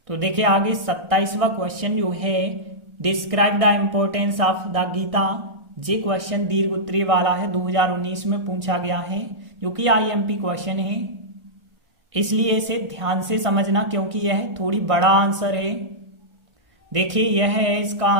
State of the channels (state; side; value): late; left; 1.6 ms